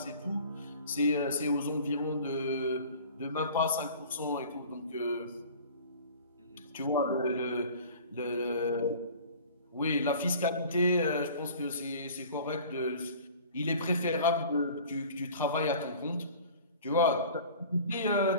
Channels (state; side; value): inverted; both; correlation -0.44